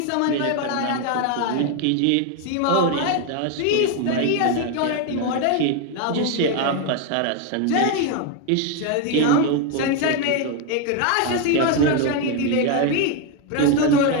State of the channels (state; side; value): different; both; correlation 0.01